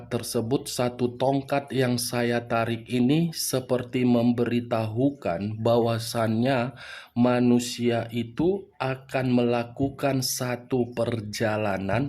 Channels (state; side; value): identical; both; correlation 1.00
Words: tersebut, satu tongkat yang saya tarik ini seperti memberitahukan bahwasannya manusia itu akan melakukan satu